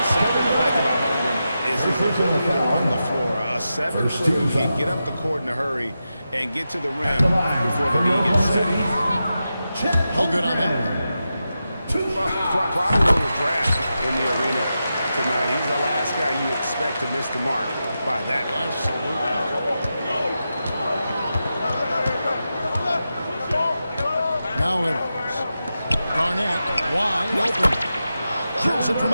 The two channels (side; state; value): both; inverted; correlation -0.90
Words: something I like about Holmgren is his ability to run the floor. A 7-footer who can get up the court in a hurry and get to the rim before the knee gets set. No good on that one. Probably a little draft in the arena tonight. He's the last guy you expect to miss the mark by that much. Absolutely. Now Edwards. Garnett wide open. Drills it from